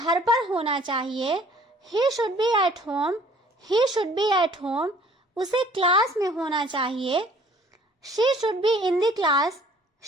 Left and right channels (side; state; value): both; normal; correlation 0.55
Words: पर होना चाहिए। He should be at home. He should be at home. उसे क्लास में होना चाहिए। She should be in the class.